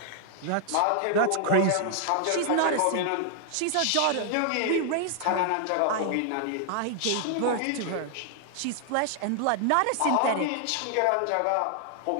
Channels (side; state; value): both; different; correlation 0.00